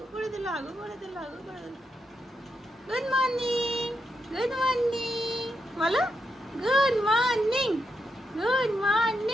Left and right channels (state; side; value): normal; both; correlation 0.83